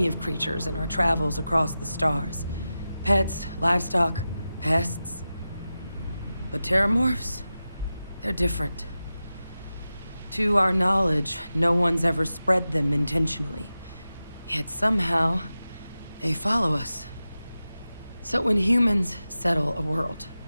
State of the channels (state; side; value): inverted; both; correlation -0.93